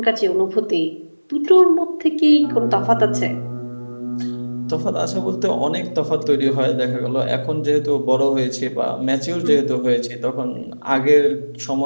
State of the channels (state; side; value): inverted; both; correlation -1.00